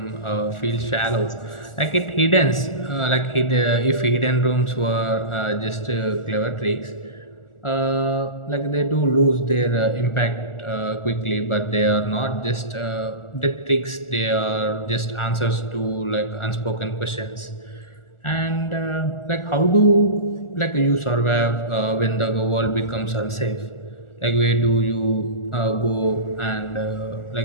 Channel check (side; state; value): right; late; 1.4 ms